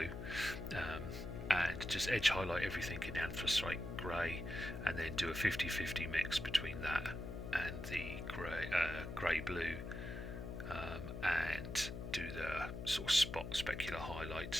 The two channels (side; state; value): left; noise; hum, 7 dB below the sound